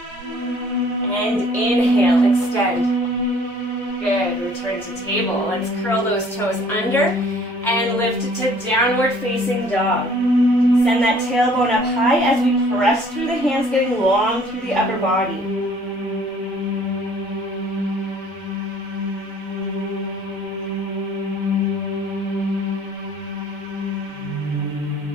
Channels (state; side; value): normal; both; correlation 0.55